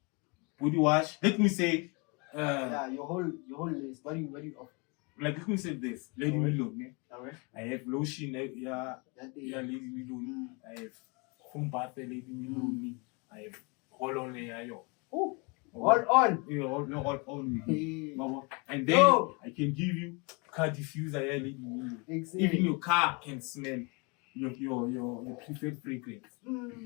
body wash. Let me say, Yeah, your whole list. What do you offer? like let me say this, Lady Milone. Alright. I have lotion, Lady Milone. I have foam bath, Lady Milone. I have roll-on, Oh, all on. Yeah, all on. Hey. And then I can give you car diffuser, Lady Milone. Exactly. Even your car can smell your preferred fragrance.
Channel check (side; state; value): right; quieter; 30.7 dB